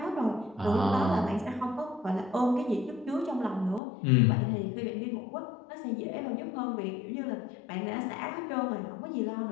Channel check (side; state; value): right; drops out; at 3.8 s